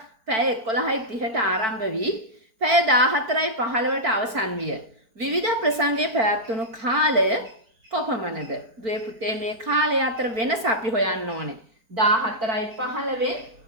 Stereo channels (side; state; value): left; late; 4.5 ms